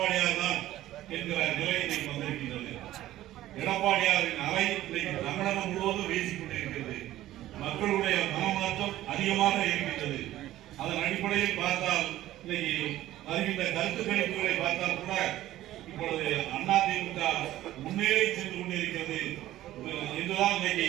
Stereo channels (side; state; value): left; quieter; 14.5 dB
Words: தான் என்கிற நிலை இன்னைக்கு வந்திருக்கின்றது. எடப்பாடியாரின் அலை இன்னைக்கு தமிழகம் முழுவதும் வீசிக் கொண்டிருக்கிறது. மக்களுடைய மனமாற்றம் அதிகமாக இருக்கின்றது. அதன் அடிப்படையில் பார்த்தால் இன்னைக்கு வருகின்ற கருத்து கணிப்புகளை பார்த்தால் கூட இப்பொழுது அதிமுக முன்னேறி சென்று கொண்டிருக்கிறது என்றுதான் இன்னைக்கு